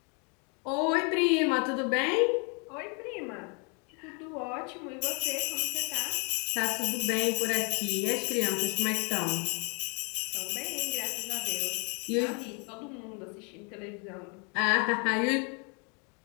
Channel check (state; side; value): quieter; right; 35.5 dB